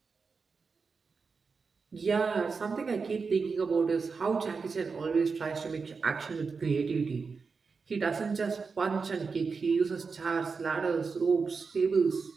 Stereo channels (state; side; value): quieter; left; 4.9 dB